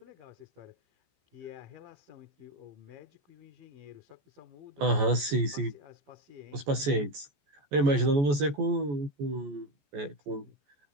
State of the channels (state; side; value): late; left; 14 ms